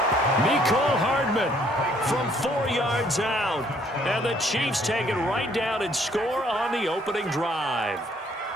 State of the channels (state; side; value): normal; both; correlation 0.64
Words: Mecole Hardman from 4 yards out. And the Chiefs take it right down and score on the opening drive.